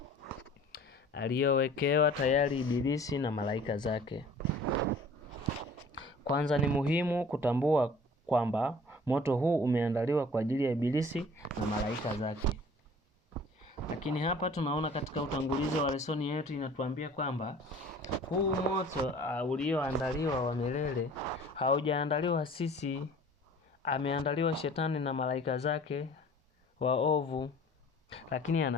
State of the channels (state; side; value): normal; both; correlation 0.48